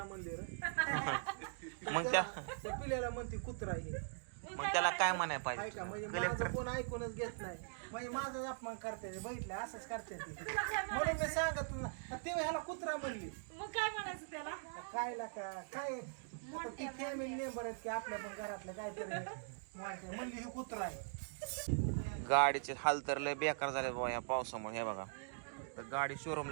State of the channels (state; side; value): silent; left; digital silence